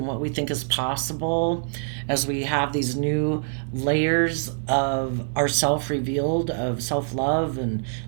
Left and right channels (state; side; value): silent; left; digital silence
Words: what we think is possible as we have these new layers of ourself revealed, of self-love and